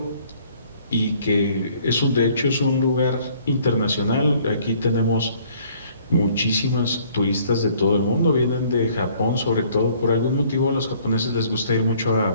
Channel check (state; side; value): inverted; both; correlation -0.59